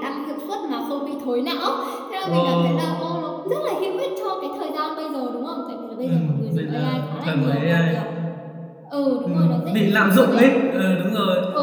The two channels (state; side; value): identical; both; correlation 1.00